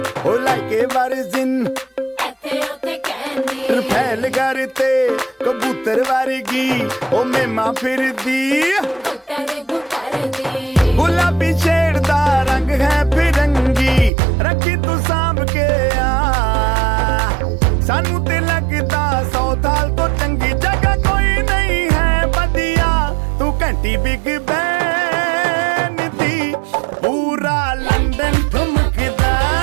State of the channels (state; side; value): drops out; left; at 14.1 s